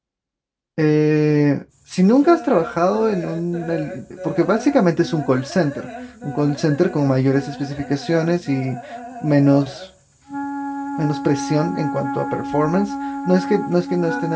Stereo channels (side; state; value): both; identical; correlation 1.00